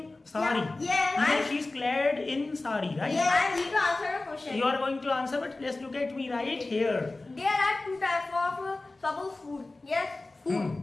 sari. Yeah. Even if she is clad in sari, right? Yeah. I am going to answer the question. You are going to answer, but let's look at me right here. There are two types of suppose food. Yes,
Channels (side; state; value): right; quieter; 3.1 dB